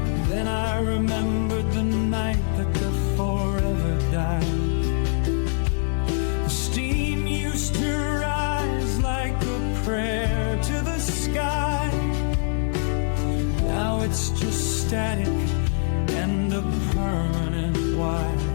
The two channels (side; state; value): right; silent; digital silence